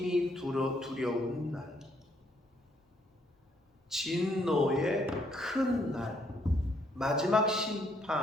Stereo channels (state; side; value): normal; both; correlation 0.70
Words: 두려운 날. 진노의 큰 날. 마지막